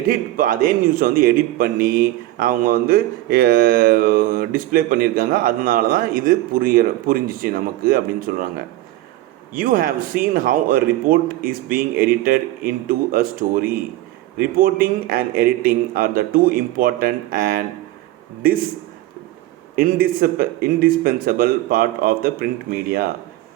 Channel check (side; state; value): left; quieter; 16.0 dB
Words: அதே நியூஸை வந்து எடிட் பண்ணி அவங்க வந்து டிஸ்பிளே பண்ணியிருக்காங்க. அதனால தான் இது புரிஞ்சிச்சு நமக்கு அப்படின்னு சொல்கிறாங்க. You have seen how a report is being edited into a story. Reporting and editing are the two important and indispensable part of the print media.